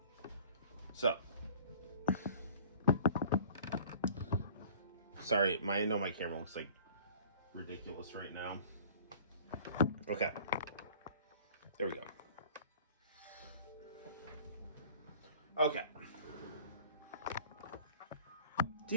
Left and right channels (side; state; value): both; inverted; correlation -0.48